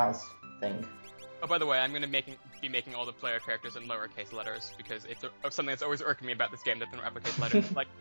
thing. Oh, by the way, I'm gonna be making all the player characters in lowercase letters because it's something that's always irking me about this game that they're in uppercase letters. Like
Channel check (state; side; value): inverted; both; correlation -1.00